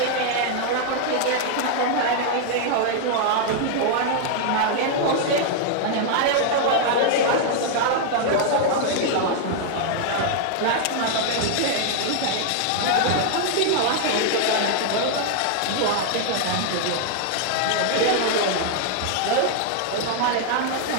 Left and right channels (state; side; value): different; both; correlation -0.01